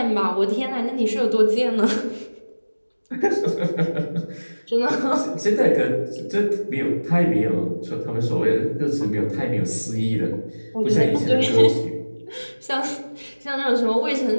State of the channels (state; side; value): inverted; both; correlation -1.00